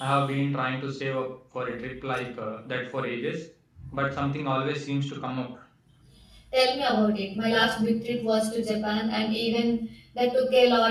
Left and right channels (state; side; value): identical; both; correlation 1.00